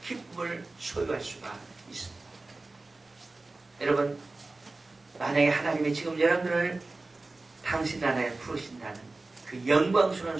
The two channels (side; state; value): left; quieter; 3.3 dB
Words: 기쁨을 소유할 수가 있습니다. 여러분, 만약에 하나님이 지금 여러분들을 당신 나라에 부르신다는 그 영광스러운